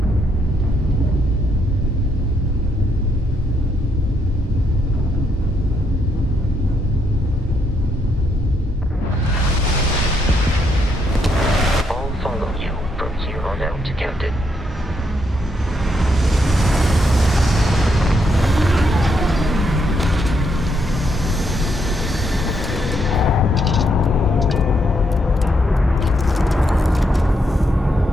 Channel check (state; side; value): normal; both; correlation 0.76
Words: I'll follow you from here on out, Captain.